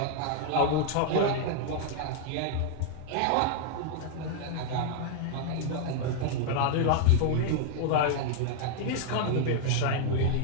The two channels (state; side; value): different; both; correlation 0.00